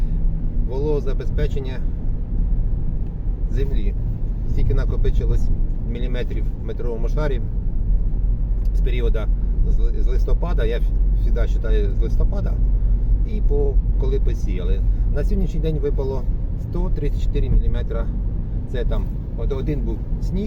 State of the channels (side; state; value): both; identical; correlation 1.00